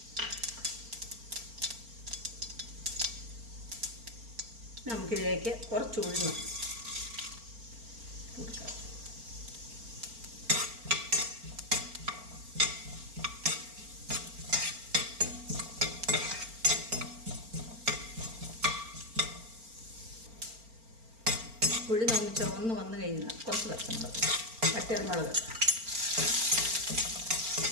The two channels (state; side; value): late; left; 4.4 ms